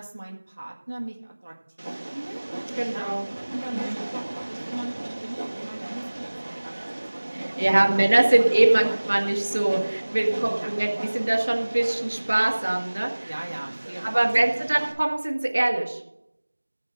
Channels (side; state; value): both; inverted; correlation -1.00